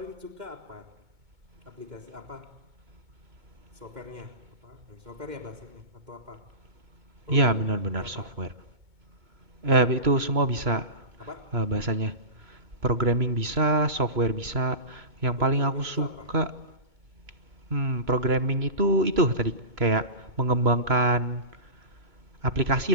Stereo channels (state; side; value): late; left; 2.2 ms